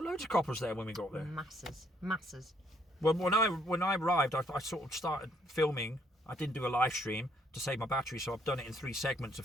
loads of coppers there when we got there. Masses. Well, when I arrived, I sort of started filming. I didn't do a live stream to save my battery, so I've done it in 3 segments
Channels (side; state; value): both; normal; correlation 0.68